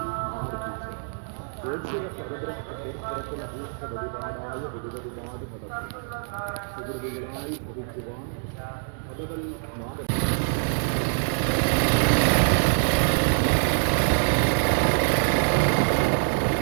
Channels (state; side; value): silent; left; digital silence